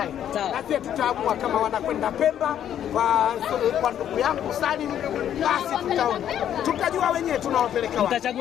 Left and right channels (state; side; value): quieter; right; 10.2 dB